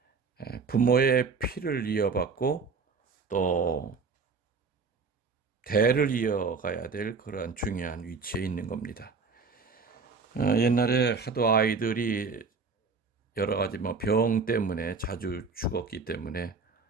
부모의 피를 이어받고 또 대를 이어가야 될 그러한 중요한 위치에 있는 겁니다. 옛날에 하도 아이들이 여러 가지 병 때문에 자주 죽었기 때문에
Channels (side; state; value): left; quieter; 4.7 dB